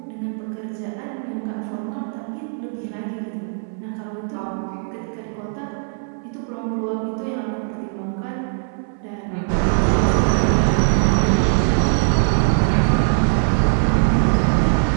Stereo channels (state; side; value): silent; left; 65 dB below the other